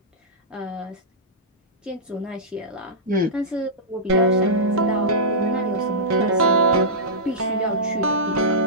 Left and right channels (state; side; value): normal; both; correlation -0.14